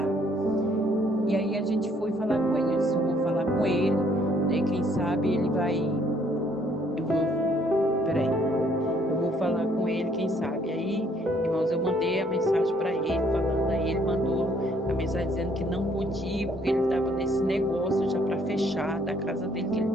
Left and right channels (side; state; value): both; normal; correlation 0.64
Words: E aí a gente foi falar com ele. Eu disse, eu vou falar com ele, né? Quem sabe ele vai. Eu vou falar com ele, quem sabe. Aí, irmãos, eu mandei a mensagem para ele, falando, aí ele mandou a mensagem dizendo que não podia, porque ele estava nesse negócio já para fechar da casa dele, que ele